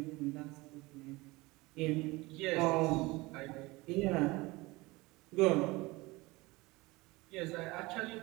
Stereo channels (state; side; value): quieter; left; 22.3 dB